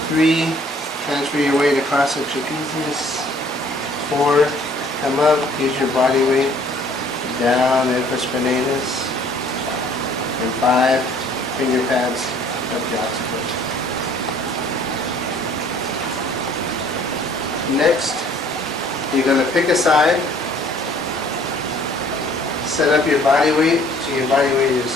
3 transfer your weight across the trapezius, 4 come up, use your body weight down infraspinatus, and 5 finger pads up the occiput. Next, you're going to pick a side, set up your body weight, so your body weight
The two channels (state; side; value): normal; both; correlation 0.57